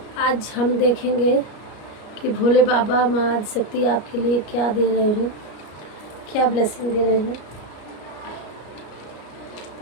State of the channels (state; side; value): late; right; 33 ms